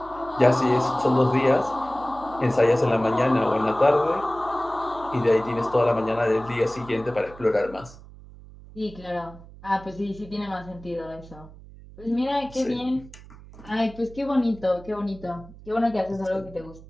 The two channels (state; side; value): noise; right; hum, 19 dB below the sound